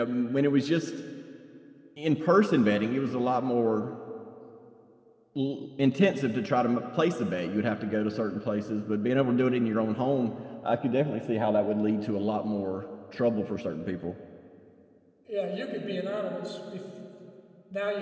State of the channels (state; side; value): identical; both; correlation 1.00